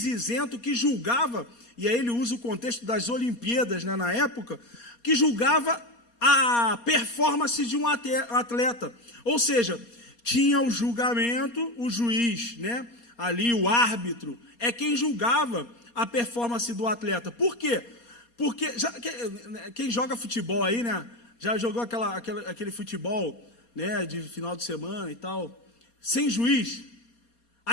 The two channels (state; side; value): late; right; 4.2 ms